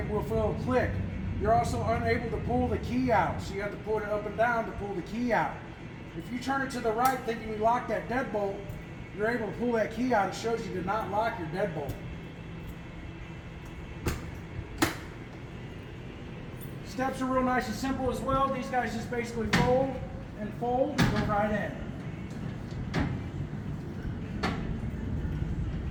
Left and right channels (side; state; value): both; identical; correlation 1.00